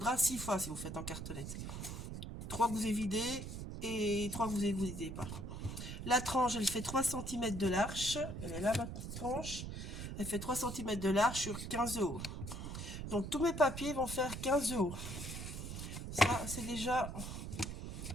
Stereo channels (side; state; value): right; noise; rumble, 7 dB below the sound